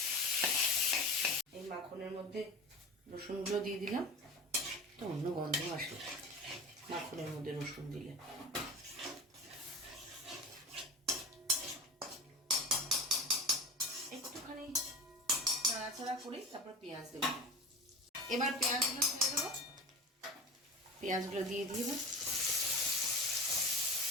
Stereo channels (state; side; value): normal; both; correlation 0.31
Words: এই মাখনের মধ্যে রসুনগুলো দিয়ে দিলাম, তো অন্য গন্ধ আসে মাখনের মধ্যে রসুন দিলে। একটুখানি নাড়াচাড়া করে তারপর পেঁয়াজ দেবো। এবার পেঁয়াজগুলো ছেড়ে দেবো, পেঁয়াজগুলো দিয়ে দিব।